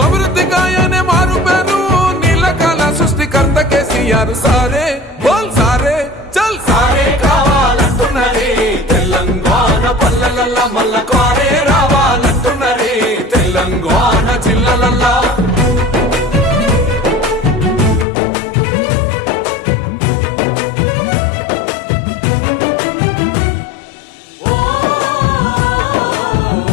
అభివృద్ధి గాయనే మారు పేరు నీళ్ళకాల సృష్టికర్త కేసీఆర్ సారే బోల్ సారే చల్ సారే కావాలంటున్నరే తెలంగాణ పల్లెలల్ల మల్ల కారే రావాలంటున్నరే తెలంగాణ జిల్లాలల్లో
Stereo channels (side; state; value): right; drops out; at 18.1 s